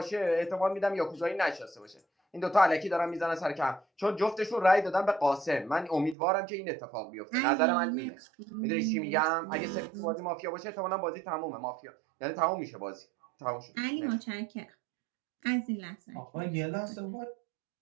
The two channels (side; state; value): left; drops out; at 6.2 s